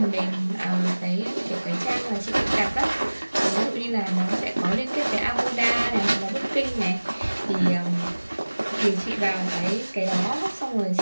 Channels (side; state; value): both; inverted; correlation -1.00